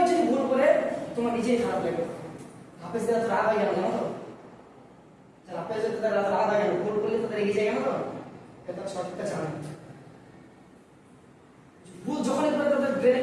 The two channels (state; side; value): identical; both; correlation 1.00